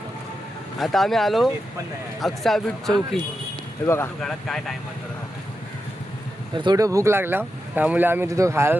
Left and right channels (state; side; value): normal; both; correlation 0.88